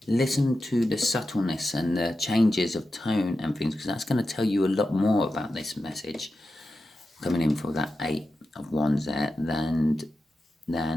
listen to the subtleness and the changes of tone and things, because that's going to tell you a lot more about this message coming in for that 8 of Wands there than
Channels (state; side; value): normal; both; correlation 0.91